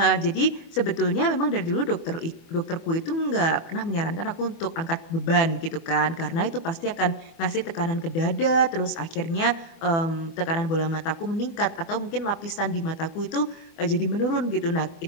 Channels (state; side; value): late; right; 25 ms